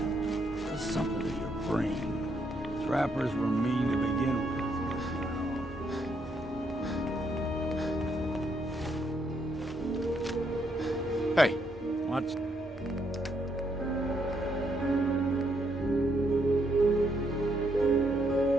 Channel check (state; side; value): normal; both; correlation 0.75